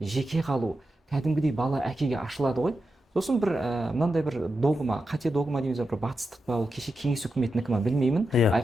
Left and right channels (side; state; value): both; normal; correlation 0.89